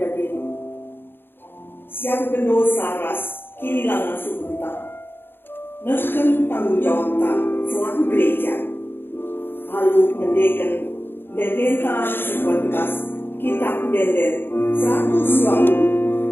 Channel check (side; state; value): right; late; 0.10 ms